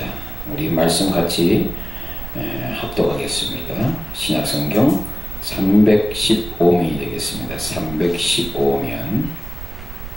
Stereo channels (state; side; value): noise; right; rumble, 10 dB below the sound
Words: 우리 말씀 같이 합독하겠습니다. 신약성경 315면이 되겠습니다. 315면.